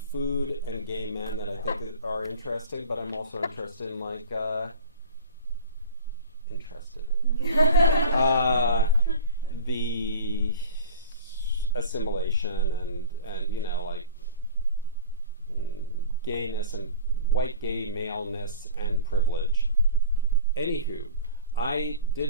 food and gay men that I think are interesting, but I'm also interested in the assimilation and you know, like gayness and white gay maleness and privilege. Anywho, I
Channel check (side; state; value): both; inverted; correlation -0.39